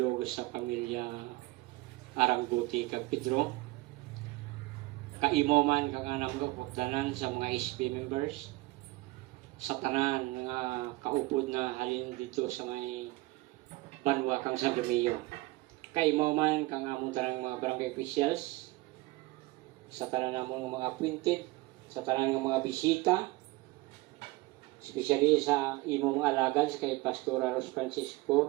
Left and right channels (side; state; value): left; quieter; 21.1 dB